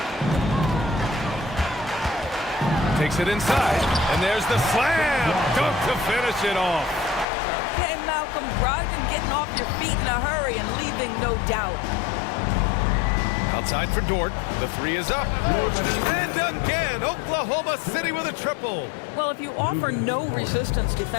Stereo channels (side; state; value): right; drops out; at 7.2 s